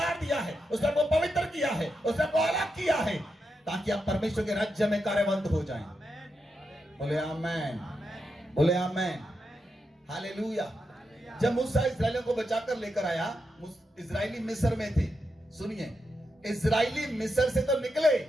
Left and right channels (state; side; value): normal; both; correlation 0.85